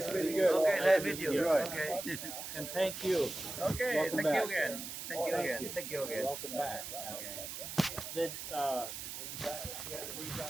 meeting you. Okay, nice to meet you. Good. Okay. And thank you. Okay, Welcome thank back. you again. Thank you again. Thank you again. Welcome back. Okay. Did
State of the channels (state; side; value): noise; right; hiss, 7 dB below the sound